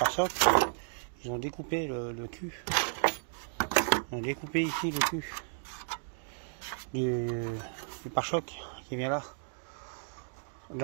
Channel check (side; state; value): left; silent; digital silence